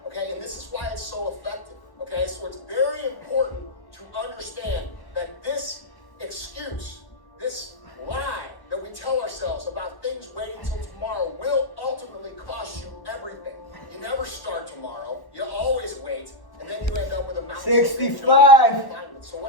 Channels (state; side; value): late; right; 1.1 ms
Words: okay? And this is why it's so effective, okay? So it's very important to understand that this excuse, this lie that we tell ourselves about things waiting until tomorrow will ultimately cost you everything. You never start tomorrow. You always wait, and then you end up with a mountain. 65. So